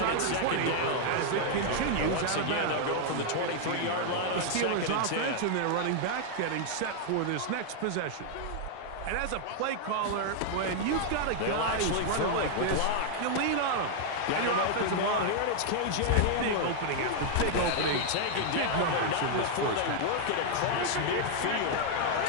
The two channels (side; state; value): both; different; correlation 0.00